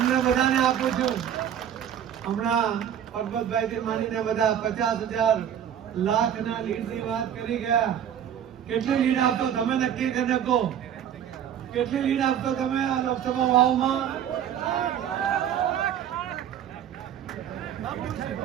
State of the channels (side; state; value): left; quieter; 9.6 dB